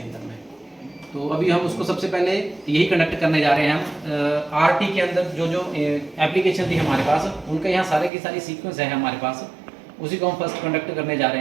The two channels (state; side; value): drops out; left; at 8.1 s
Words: अंदर में। तो अभी हम उसको सबसे पहले यही कंडक्ट करने जा रहे हैं। हम आरटी के अंदर जो जो एप्लीकेशन थी हमारे पास, उनका यहाँ सारे की सारी सीक्वेंस है हमारे पास, उसी को हम फर्स्ट कंडक्ट करने जा